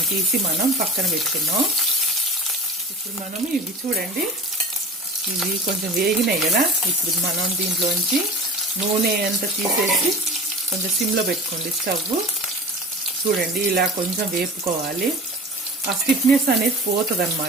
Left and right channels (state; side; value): normal; both; correlation 0.36